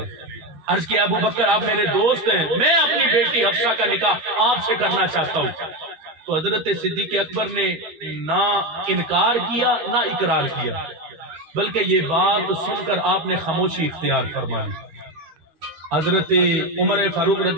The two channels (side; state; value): left; late; 12 ms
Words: عرض کیا ابو بکر آپ میرے دوست ہیں، میں اپنی بیٹی حفصہ کا نکاح آپ سے کرنا چاہتا ہوں۔ تو حضرت صدیق اکبر نے نہ انکار کیا نہ اقرار کیا، بلکہ یہ بات سن کر آپ نے خاموشی اختیار فرمائی۔ حضرت عمر فاروق